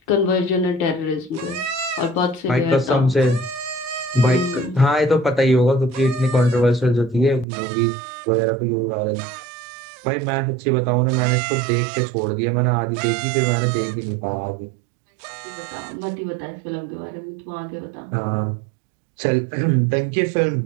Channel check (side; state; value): left; drops out; at 7.5 s